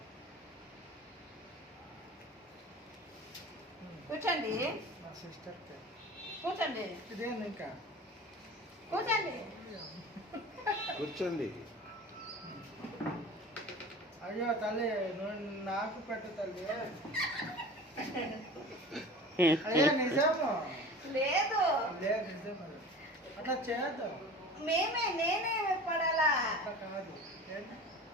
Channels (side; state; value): both; normal; correlation 0.38